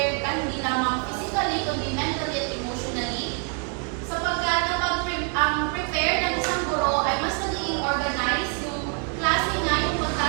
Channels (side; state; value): left; quieter; 37.8 dB